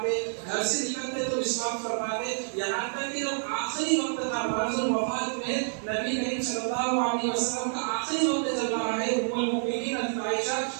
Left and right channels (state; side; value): silent; left; digital silence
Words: گھر سے نکلتے تو مسواک فرماتے، یہاں تک کہ جب آخری وقت تھا مرض الوفات میں، نبی کریم صلی اللہ علیہ وسلم کا آخری وقت چل رہا ہے، ام المؤمنین حضرت عائشہ